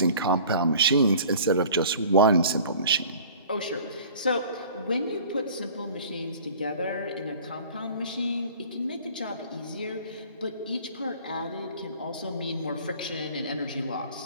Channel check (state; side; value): inverted; both; correlation -0.46